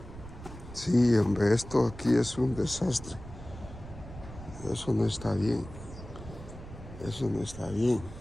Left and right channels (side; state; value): right; noise; rumble, 14 dB below the sound